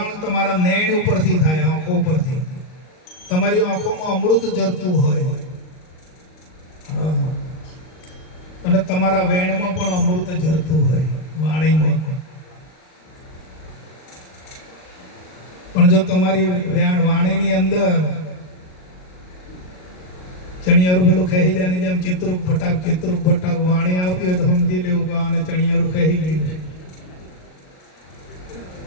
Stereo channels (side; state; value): right; late; 38 ms